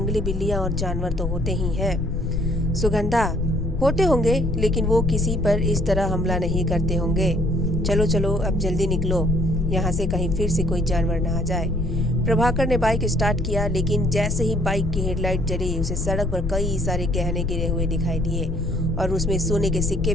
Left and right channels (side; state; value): left; noise; rumble, 2 dB below the sound